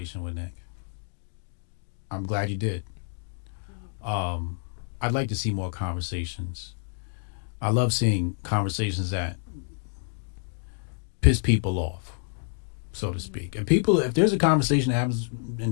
with Nick. I'm glad you did. I'd like to see more conversations. I love seeing conversations that piss people off, so to speak. And if there's a conversation that happens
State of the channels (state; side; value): silent; right; digital silence